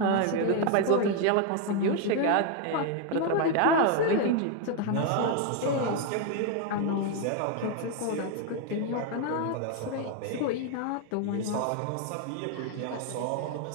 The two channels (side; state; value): both; different; correlation 0.01